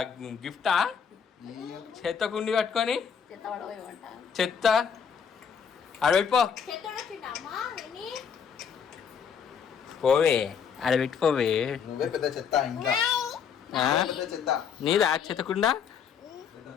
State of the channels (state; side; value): quieter; right; 7.2 dB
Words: గిఫ్టా? చెత్త కుండి కట్టుకొని చెత్త ఆడబెట్టిపో, పోవే ఆడబెట్టిపోవే. నువ్వే పెద్ద చెత్త ఇంకా. నీదా చెత్త కుండా?